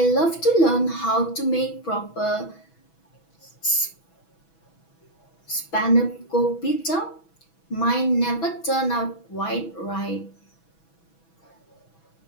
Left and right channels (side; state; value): right; late; 6.1 ms